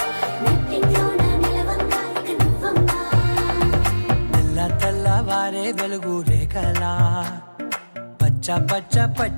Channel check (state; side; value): inverted; both; correlation -1.00